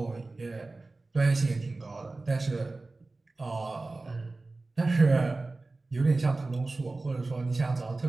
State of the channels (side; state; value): left; quieter; 3.3 dB